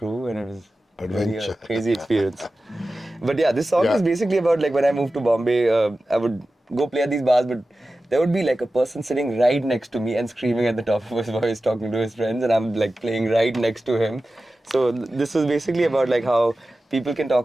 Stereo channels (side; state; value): both; normal; correlation 0.94